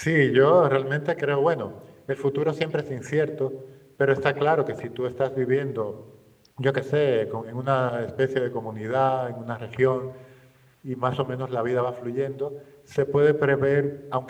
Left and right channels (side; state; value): both; identical; correlation 1.00